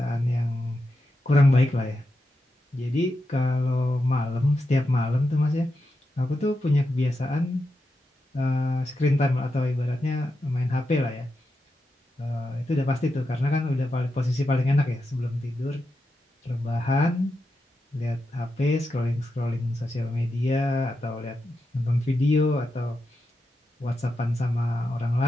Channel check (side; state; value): both; normal; correlation 0.87